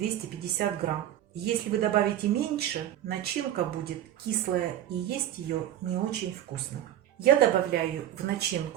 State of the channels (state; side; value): quieter; left; 12.0 dB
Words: грамм. Если вы добавите меньше, начинка будет кислая и есть ее не очень вкусно. Я добавляю в